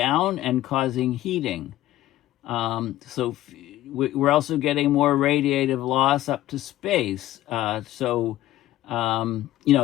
and causing heating. So we're also getting more radiative loss up to space.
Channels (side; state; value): right; quieter; 14.9 dB